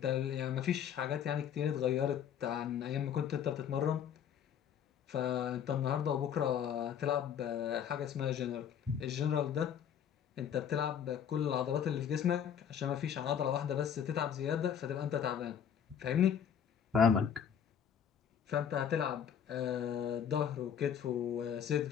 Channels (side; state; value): right; quieter; 8.5 dB